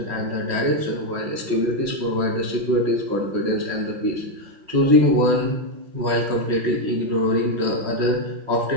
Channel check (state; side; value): late; left; 5.4 ms